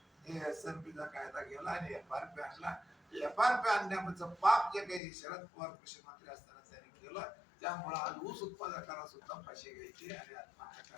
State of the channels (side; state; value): right; drops out; at 5.0 s